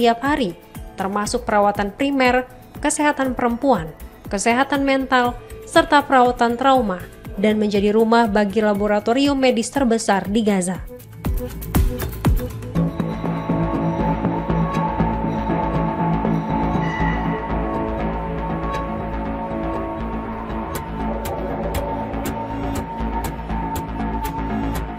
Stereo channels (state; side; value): identical; both; correlation 1.00